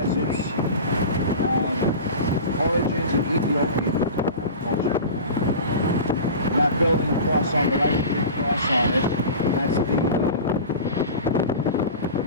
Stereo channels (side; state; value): both; inverted; correlation -0.34